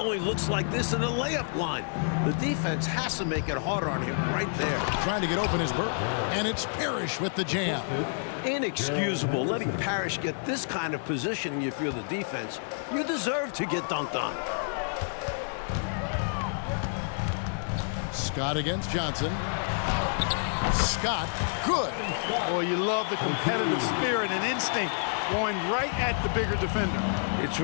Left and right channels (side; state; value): right; silent; digital silence